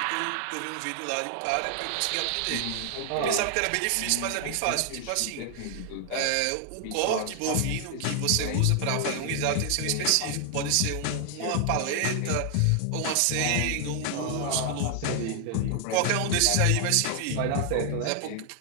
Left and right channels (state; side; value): different; both; correlation 0.00